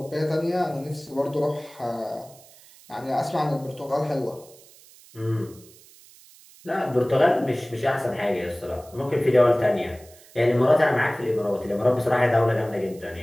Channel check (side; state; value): right; noise; hiss, 24 dB below the sound